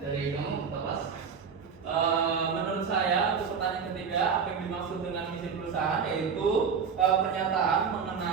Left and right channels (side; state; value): left; quieter; 6.3 dB